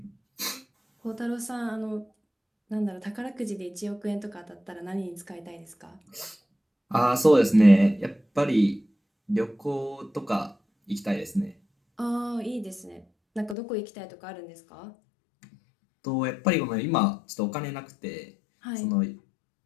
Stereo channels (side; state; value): right; drops out; at 13.6 s